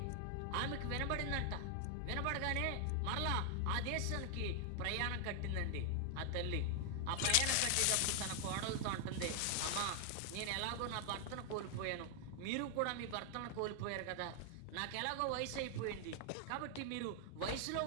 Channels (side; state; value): both; different; correlation 0.00